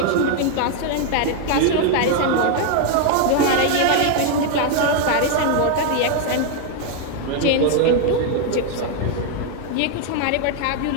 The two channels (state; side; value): different; both; correlation 0.00